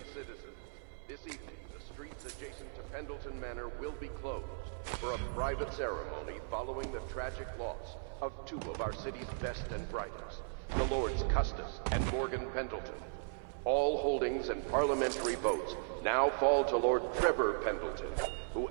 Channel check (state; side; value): silent; left; 53 dB below the other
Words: citizens, this evening the streets adjacent to Pendleton Manor will be closed for a private ceremony following the tragic loss of two of our city's best and brightest, the Lords Custis and Morgan Pendleton. All holdings and parliamentary votes now fall to Lord Trevor Pendleton, who